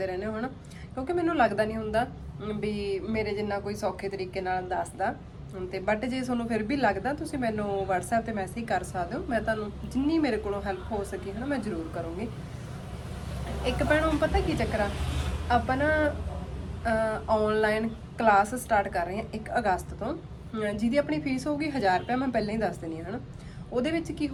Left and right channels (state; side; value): identical; both; correlation 1.00